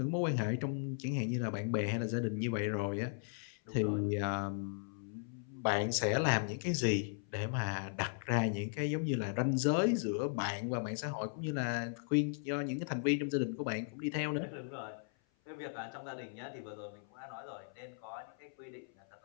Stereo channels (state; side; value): silent; right; 53 dB below the other